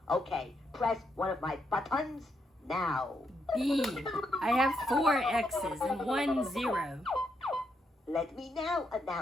Okay, press one of my buttons now. B. I have 4 X's and 1 0. Let me now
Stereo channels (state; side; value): normal; both; correlation 0.79